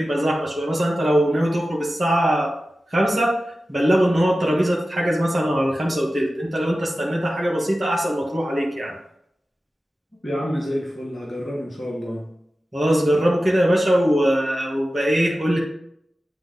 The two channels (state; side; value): normal; both; correlation 0.94